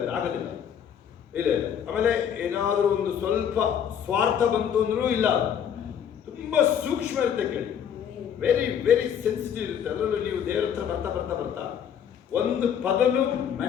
ಆಗೋದಿಲ್ಲ. ಇಲ್ಲ. ಆಮೇಲೆ ಏನಾದರೂ ಒಂದು ಸ್ವಲ್ಪ ಸ್ವಾರ್ಥ ಬಂತು ಅಂದ್ರೂ ಇಲ್ಲ, ತುಂಬಾ ಸೂಕ್ಷ್ಮ ಇರುತ್ತೆ. ಕೇಳಿ, ವೆರಿ ವೆರಿ ಸೆನ್ಸಿಟಿವ್ ಇರುತ್ತೆ. ಅದರಲ್ಲೂ ನೀವು ದೇವರ ಹತ್ರ ಬರ್ತಾ ಬರ್ತಾ ಬರ್ತಾ ಒಂದು ಪದನು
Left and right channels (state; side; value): quieter; right; 8.6 dB